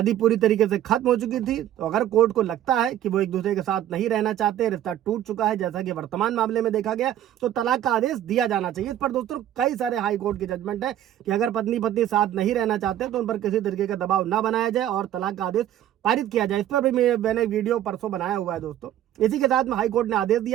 पूरी तरीके से खत्म हो चुकी थी तो अगर कोर्ट को लगता है कि वो एक दूसरे के साथ नहीं रहना चाहते, रिश्ता टूट चुका है जैसा कि वर्तमान मामले में देखा गया, तो तलाक का आदेश दिया जाना चाहिए। इस पर दोस्तों कई सारे हाई कोर्ट के जजमेंट है कि अगर पत्नी साथ नहीं रहना चाहते तो उन पर किसी तरीके का दबाव न बनाया जाए और तलाक का आदेश पारित किया जाए। इस पर भी मैंने वीडियो परसों बनाया हुआ है दोस्तों। इसी के साथ में हाई कोर्ट ने आदेश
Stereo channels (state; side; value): quieter; left; 11.8 dB